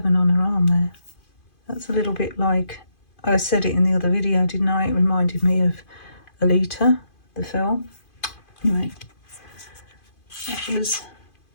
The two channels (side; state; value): right; late; 2.5 ms